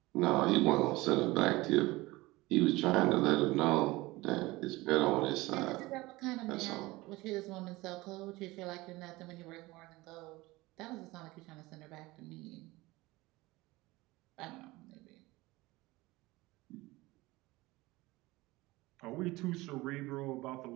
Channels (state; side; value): quieter; left; 20.5 dB